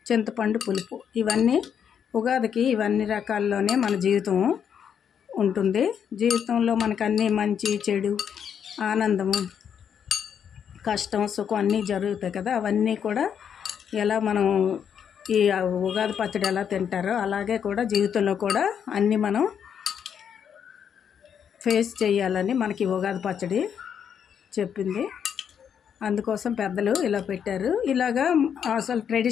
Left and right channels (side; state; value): right; quieter; 8.0 dB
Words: చింతపండు పులుపు. ఇవన్నీ ఉగాదికి ఇవన్నీ రకాల్లోనే మన జీవితం ఉంటుంది. జీవితంలో మనకు అన్నీ మంచి చెడు, ఆనందము, కష్టం, సుఖం అన్నీ జరుగుతాయి కదా. అవన్నీ కూడా ఎలా మనం ఈ ఉగాది పచ్చడి ఎలా తింటారో అలాగే కూడా జీవితంలో కూడా అన్నీ మనం ఫేస్ చేయాలని మనకి ఉగాది పచ్చడి చెప్పింది. అందుకోసం పెద్దలు ఇలా పెట్టారు. ఇలాగా అసలు